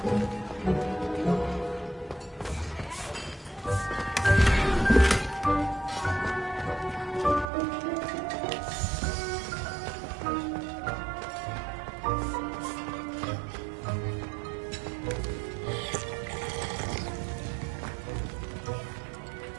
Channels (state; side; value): drops out; left; at 7.5 s